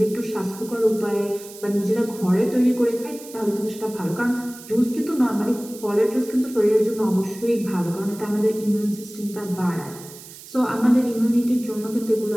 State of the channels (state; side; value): noise; right; hiss, 17 dB below the sound